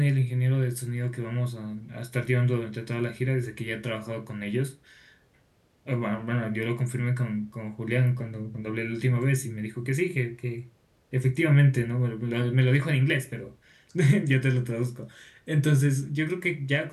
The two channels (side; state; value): both; identical; correlation 1.00